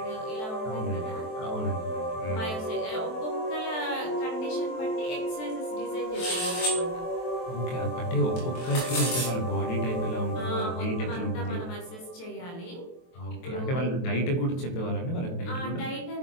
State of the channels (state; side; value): late; right; 23 ms